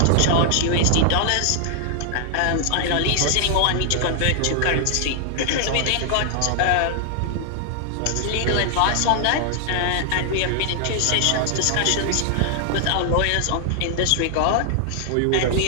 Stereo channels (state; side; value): different; both; correlation 0.00